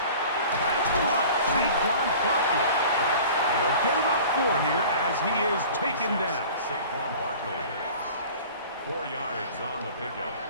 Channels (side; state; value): both; inverted; correlation -0.43